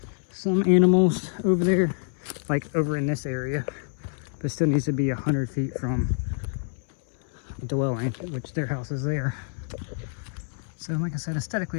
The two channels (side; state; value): right; silent; 58 dB below the other